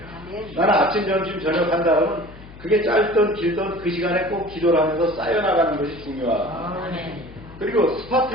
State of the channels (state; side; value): noise; left; hum, 18 dB below the sound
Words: 나는 아침, 점심, 저녁 한다 그러면 그게 짧든 길든 그 시간에 꼭 기도를 하면서 쌓여나가는 것이 중요하고 그리고